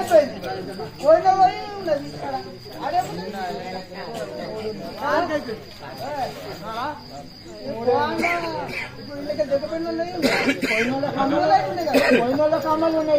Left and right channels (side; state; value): both; identical; correlation 1.00